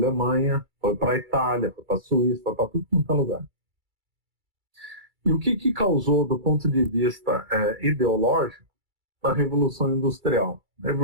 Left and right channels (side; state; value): left; late; 2.3 ms